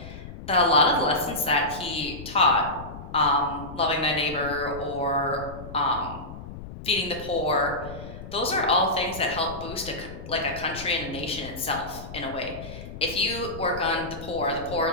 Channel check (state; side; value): noise; left; rumble, 12 dB below the sound